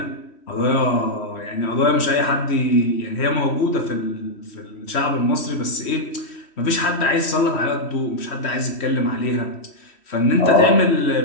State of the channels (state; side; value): late; right; 3.1 ms